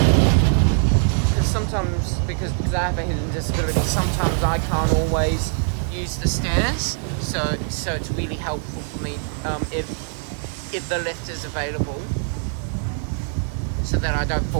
Because I have a hearing disability, sometimes I can't always use the stairs, so it's really helpful for me if the lift is available, so that I don't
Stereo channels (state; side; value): silent; left; 56 dB below the other